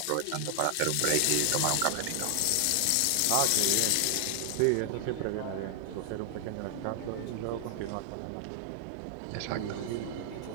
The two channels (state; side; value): different; both; correlation 0.00